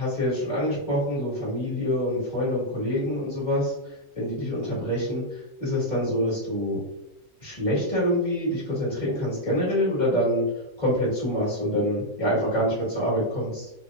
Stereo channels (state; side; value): normal; both; correlation -0.02